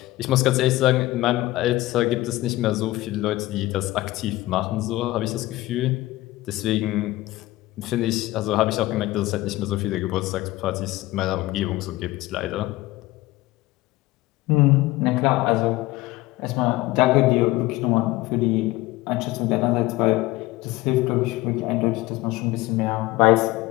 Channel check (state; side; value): quieter; right; 18.4 dB